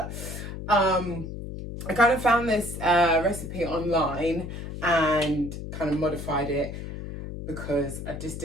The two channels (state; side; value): noise; left; hum, 8 dB below the sound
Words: I kind of found this recipe online and kind of modified it because I just